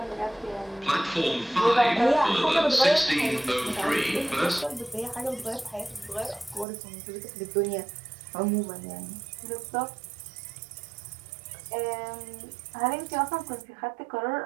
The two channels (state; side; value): drops out; left; at 6.7 s